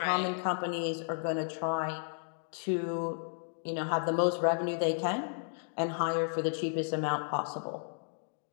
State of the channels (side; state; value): right; silent; digital silence